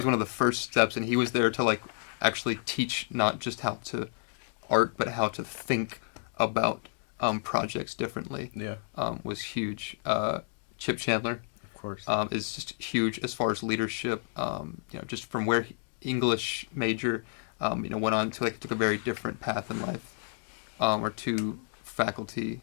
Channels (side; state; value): right; silent; digital silence